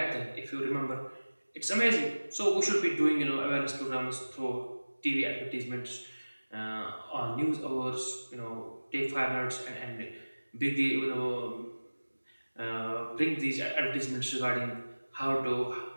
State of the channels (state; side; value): inverted; both; correlation -1.00